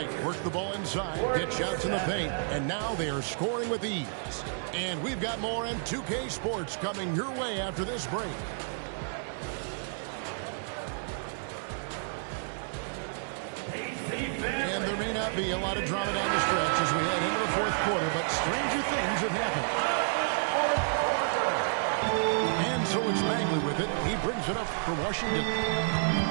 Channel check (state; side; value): silent; left; digital silence